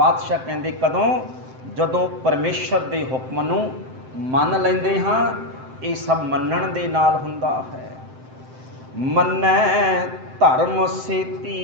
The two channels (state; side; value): late; left; 7.7 ms